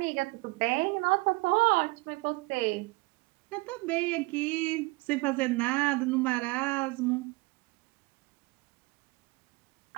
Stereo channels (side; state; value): left; quieter; 24.2 dB